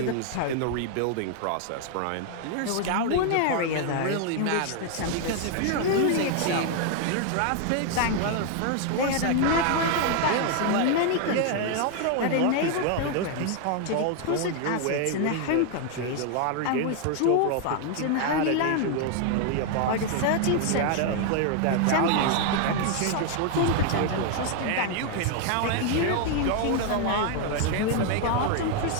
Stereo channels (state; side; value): different; both; correlation 0.00